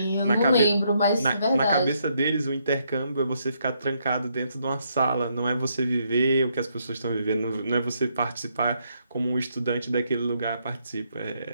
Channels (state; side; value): inverted; both; correlation -0.75